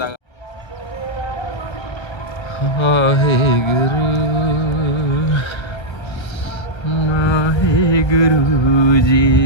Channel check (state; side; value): late; right; 1.3 ms